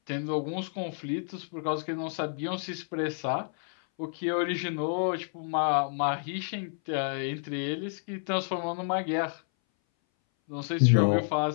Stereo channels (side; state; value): right; silent; 58 dB below the other